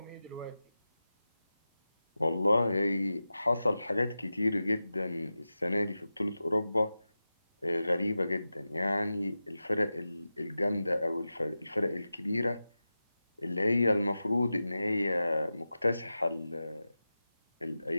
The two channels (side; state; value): both; inverted; correlation -0.94